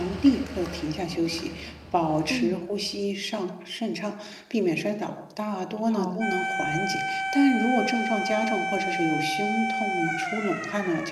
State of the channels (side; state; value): both; identical; correlation 1.00